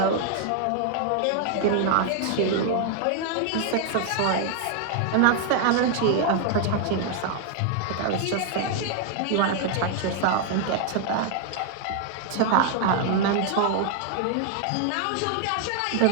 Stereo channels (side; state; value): both; different; correlation 0.00